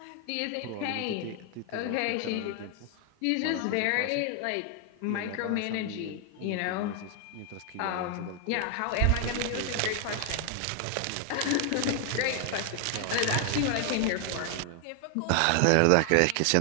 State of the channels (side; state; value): both; different; correlation 0.00